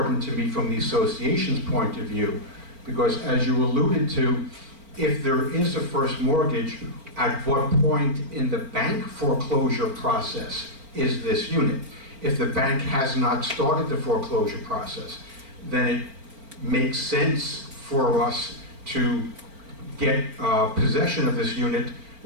to me from the association's point of view, because as you alluded to, if there is a first mortgage, at what point in the bank foreclosure process is this unit? If the bank has not started the foreclosure process, then it makes sense for us to get possession of this unit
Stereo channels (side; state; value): left; late; 4.4 ms